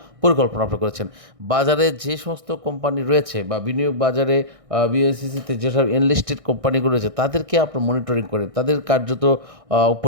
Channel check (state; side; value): late; left; 1.6 ms